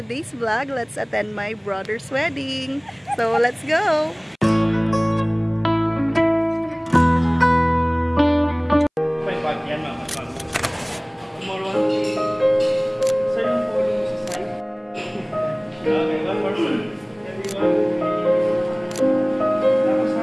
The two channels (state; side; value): identical; both; correlation 1.00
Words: today's vlog. Let's attend my brother's wedding. So let's go!